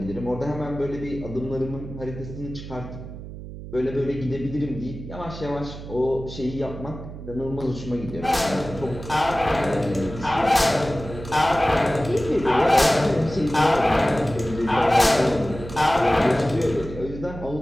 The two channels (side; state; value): right; noise; hum, 12 dB below the sound